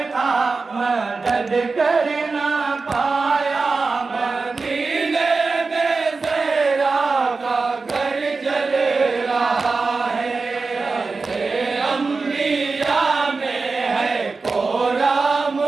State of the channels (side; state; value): left; quieter; 4.1 dB